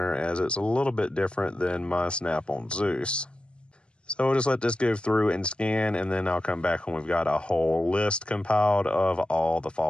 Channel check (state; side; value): late; right; 0.056 ms